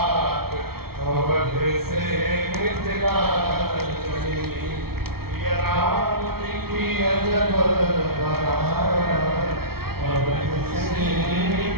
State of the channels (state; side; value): late; left; 0.94 ms